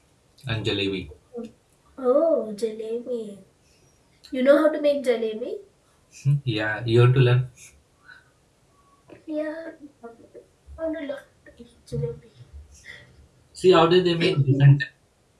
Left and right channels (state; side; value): identical; both; correlation 1.00